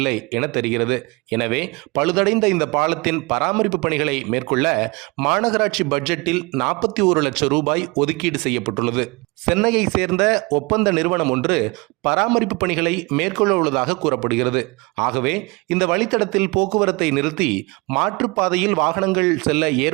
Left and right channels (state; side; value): quieter; left; 26.7 dB